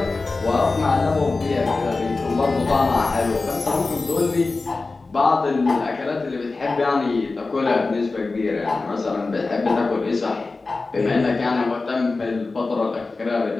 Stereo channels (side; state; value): right; quieter; 3.7 dB